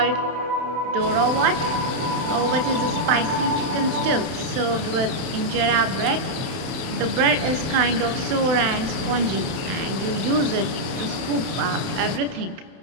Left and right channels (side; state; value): left; late; 31 ms